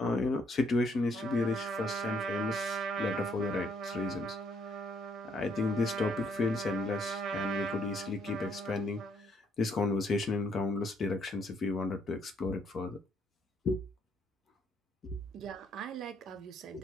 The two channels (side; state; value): both; normal; correlation 0.68